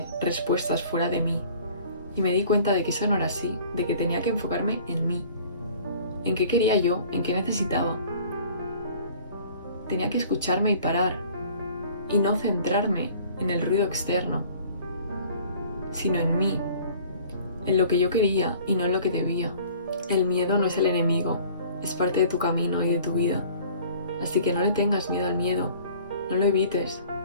respuestas fuera de mí y me di cuenta de que eso no era así, de que tenía que enfocarme en mí, en qué quería yo, en qué necesitaba. Tenía que escucharme y parar y no centrarme en el ruido externo, sino en mí, en lo que yo quería y no en lo que debía. El miedo no es el enemigo, es parte de tu camino y de tu vida. Así que no le tengas miedo al miedo, no lo evites.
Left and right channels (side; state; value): both; inverted; correlation -0.50